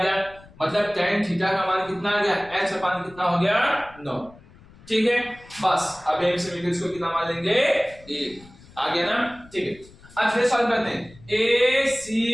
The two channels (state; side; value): noise; left; rumble, 23 dB below the sound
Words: गया, मतलब tan थीटा का मान कितना आ गया, h अपान कितना हो गया 9, ठीक है। बस अब एक से मिलकर इसको कितना मान लेंगे 1, आ गया ना, ठीक है। अब फिर सॉल्व करते हैं ए सी